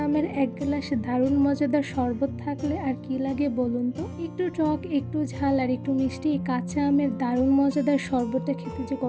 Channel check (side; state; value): both; identical; correlation 1.00